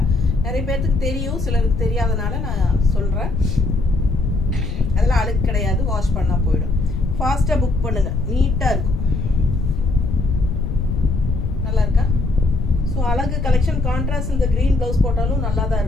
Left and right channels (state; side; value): noise; left; rumble, 3 dB below the sound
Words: நிறைய பேர்த்துக்கு தெரியும், சிலருக்கு தெரியாதனால நான் சொல்கிறேன். அதெல்லாம் அழுக்கு கிடையாது, வாஷ் பண்ணால் போயிடும். ஃபாஸ்ட்டாக புக் பண்ணுங்கள். நீட்டாக இருக்கும். நல்லா இருக்கா? ஸோ அழகு கலெக்ஷன். கான்ட்ராஸ்ட் இந்த க்ரீன் ப்ளவுஸ் போட்டாலும் நல்லா தான்